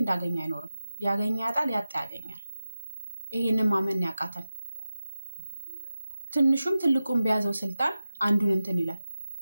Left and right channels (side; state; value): both; inverted; correlation -0.94